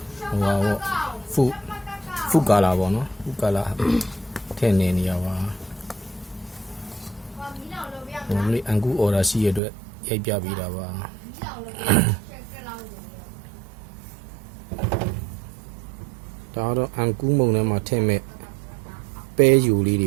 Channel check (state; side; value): drops out; left; at 9.6 s